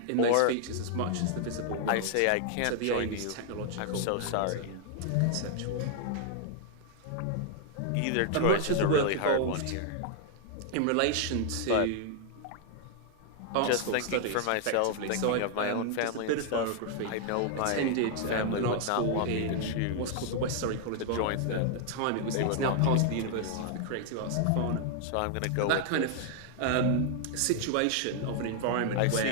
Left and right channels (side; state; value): both; different; correlation 0.00